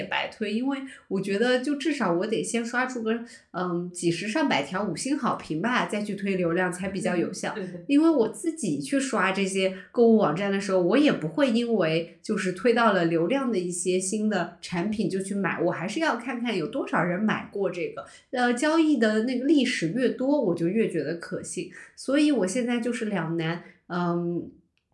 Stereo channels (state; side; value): identical; both; correlation 1.00